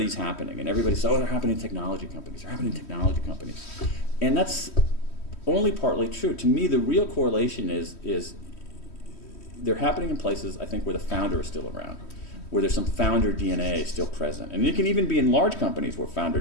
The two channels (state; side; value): late; right; 3.1 ms